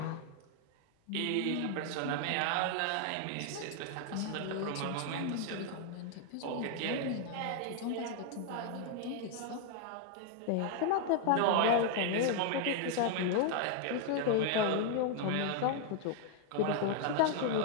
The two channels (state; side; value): different; both; correlation 0.00